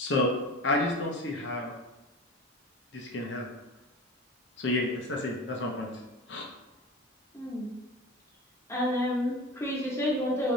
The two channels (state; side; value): normal; both; correlation 0.33